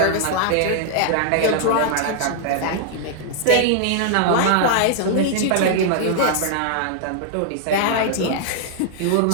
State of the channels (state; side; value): different; both; correlation 0.00